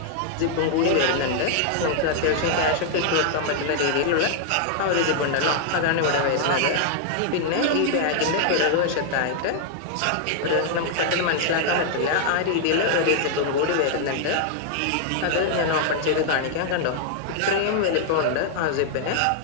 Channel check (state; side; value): different; both; correlation 0.00